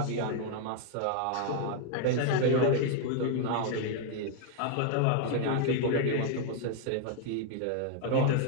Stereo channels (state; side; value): different; both; correlation 0.00